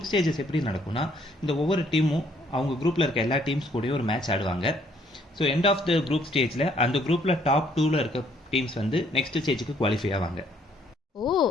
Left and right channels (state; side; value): normal; both; correlation 0.66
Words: ஸ்டேஜஸ் எப்படி நடக்கும்னா, இந்த ஒவ்வொரு டீமும் அவங்க குரூப்பில் இருக்க எல்லா டீம்ஸ் கூடயும் ஒரு மேட்ச் ஆடுவாங்க. So end of the group ஸ்டேஜில் அந்த குரூப்பில் டாப் 2ல் இருக்க டீம்ஸ் வந்து நெக்ஸ்ட் ஸ்டேஜுக்கு குவாலிஃபை ஆவாங்க. ஓ,